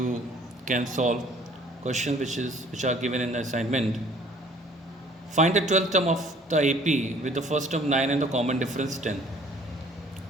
can solve questions which are given in the assignment. Find the 12th term of the AP with the first term 9 and the common difference 10.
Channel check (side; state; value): both; normal; correlation 0.55